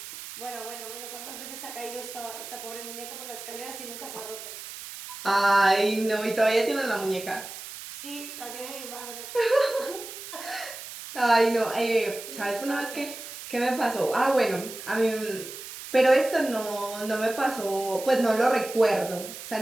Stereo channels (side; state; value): right; noise; hiss, 11 dB below the sound